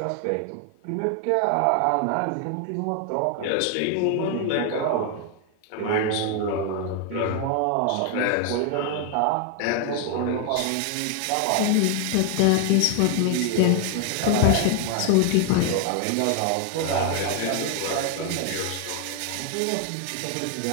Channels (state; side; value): different; both; correlation 0.00